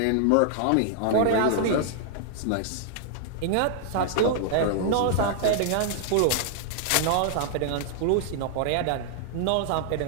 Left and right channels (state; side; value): different; both; correlation -0.01